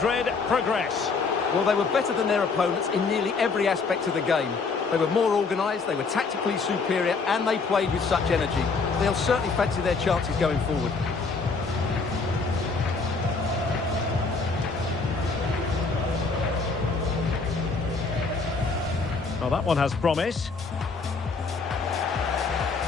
progress. Well, they were better than their opponents in nearly every aspect of the game. They were more organised, they were tactically superior, and they played with such energy. They'll certainly fancy their chances going forward. Well, that one has promise.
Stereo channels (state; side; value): quieter; right; 4.5 dB